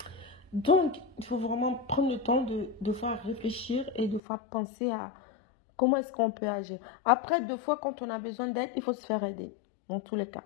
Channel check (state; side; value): drops out; right; at 4.2 s